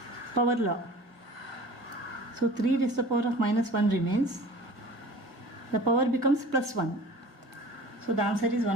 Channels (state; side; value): late; left; 1.6 ms